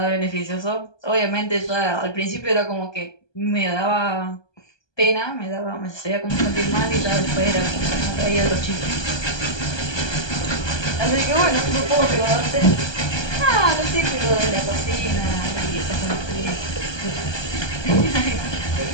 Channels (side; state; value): right; late; 1.2 ms